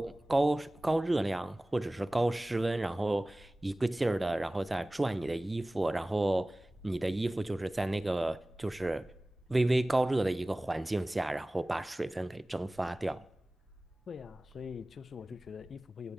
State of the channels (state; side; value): normal; both; correlation 0.98